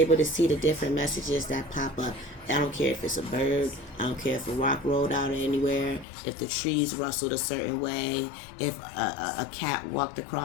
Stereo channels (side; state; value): right; drops out; at 6.1 s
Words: to see the different messages that pop up. I don't care if it's a bird. I don't care if a rock rolled out anywhere, if the trees rustled a certain way, if a cat walked